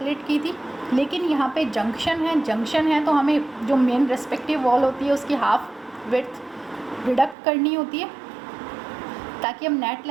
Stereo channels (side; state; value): left; drops out; at 7.4 s